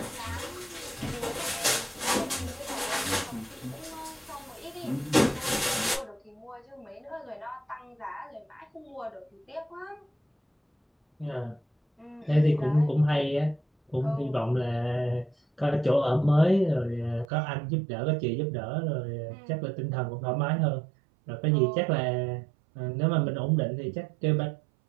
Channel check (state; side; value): drops out; left; at 17.2 s